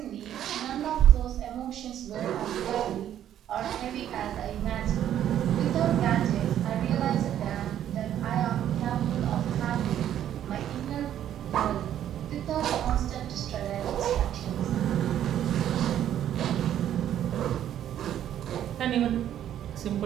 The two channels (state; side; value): quieter; left; 10.9 dB